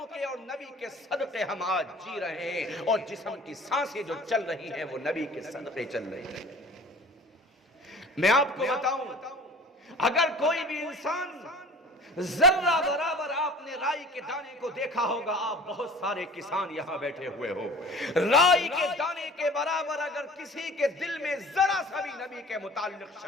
کے اور نبی کے صدقے ہم آج جی رہے ہیں، اور جسم کی سانسیں جو چل رہی ہیں وہ نبی کے صدقے چل رہی ہیں۔ میں آپ کو بتاؤں، اگر کوئی بھی انسان ذرہ برابر آپ نے رائی کے دانے کو دیکھا ہوگا، آپ بہت سارے کسان یہاں بیٹھے ہوئے ہو، رائی کے دانے کے برابر اگر کسی کے دل میں ذرا سا بھی نبی کے متعلق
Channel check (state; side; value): normal; both; correlation 0.43